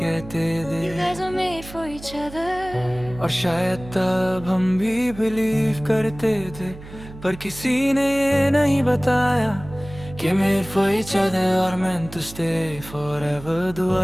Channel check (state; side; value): noise; right; hum, 16 dB below the sound